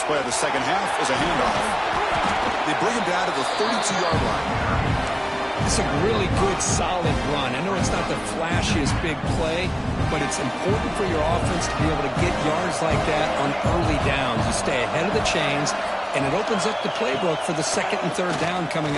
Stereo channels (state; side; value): identical; both; correlation 1.00